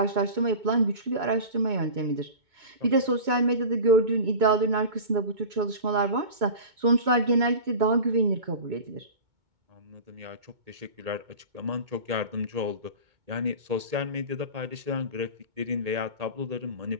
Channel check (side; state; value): left; late; 2.2 ms